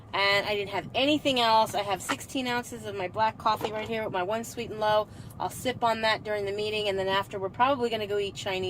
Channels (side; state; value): both; identical; correlation 1.00